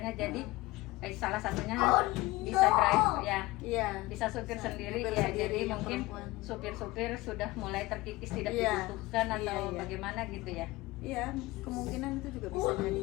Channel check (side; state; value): right; quieter; 20.1 dB